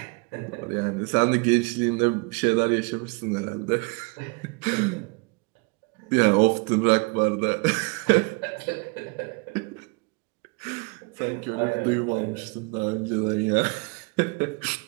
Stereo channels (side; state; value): left; quieter; 30.1 dB